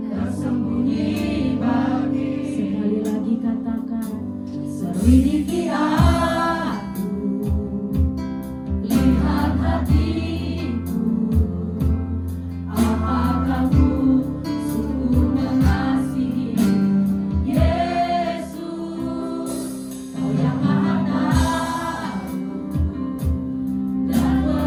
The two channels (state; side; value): identical; both; correlation 1.00